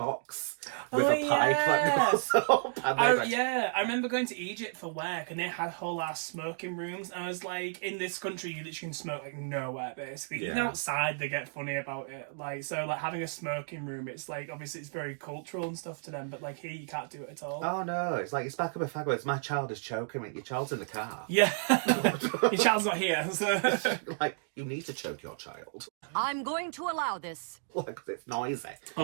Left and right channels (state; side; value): silent; left; digital silence